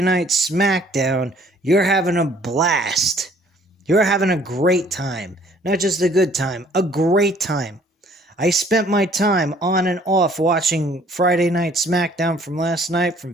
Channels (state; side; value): normal; both; correlation 0.58